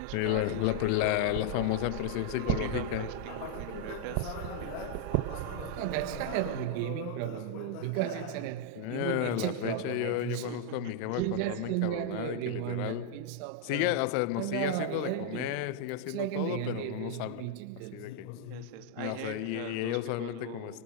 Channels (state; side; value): different; both; correlation 0.00